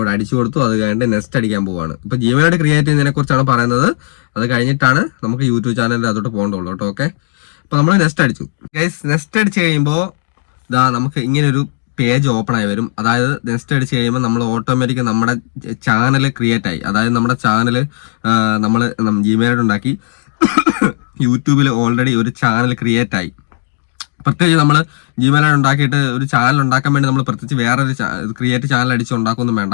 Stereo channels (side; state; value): right; silent; digital silence